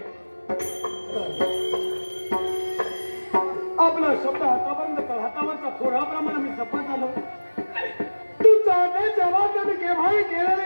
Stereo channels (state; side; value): inverted; both; correlation -1.00